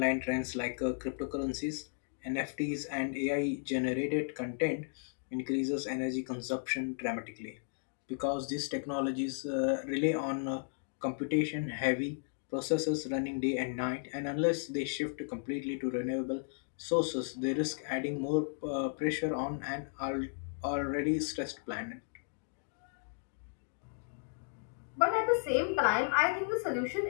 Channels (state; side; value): silent; right; digital silence